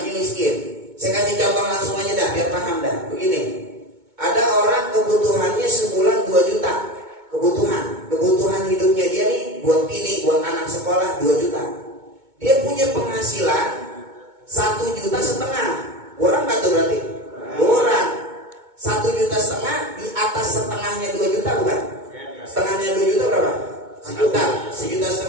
miskin. Saya kasih contoh langsung aja dah biar paham dah. Begini, ada orang kebutuhannya sebulan 2 juta. Kebutuhan hidupnya dia nih buat bini, buat anak sekolah 2 juta. Dia punya penghasilan 1,5 juta. Kurang nggak tuh berarti? Kurang. 1,5 juta di atas setengahnya 2 juta bukan? Setengahnya 2 juta berapa? 1,5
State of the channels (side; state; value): left; late; 2.2 ms